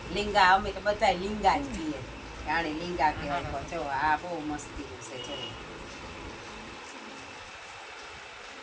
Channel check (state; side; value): identical; both; correlation 1.00